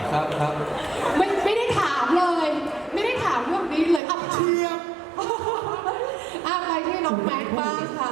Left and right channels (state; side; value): drops out; left; at 4.0 s